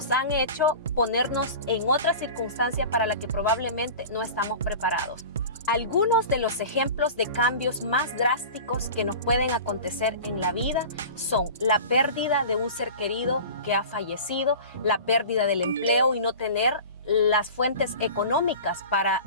han hecho ponernos en otra circunstancia para la que probablemente no estamos preparados. Algunos de los ejemplos de cambios más drásticos que nos pueden acontecer en la vida son la pérdida de un ser querido que ha fallecido, la pérdida del empleo y no tener las fuentes económicas para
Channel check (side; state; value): both; inverted; correlation -0.36